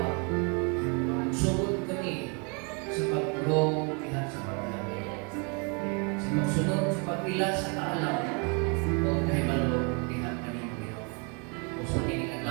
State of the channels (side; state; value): left; quieter; 34.8 dB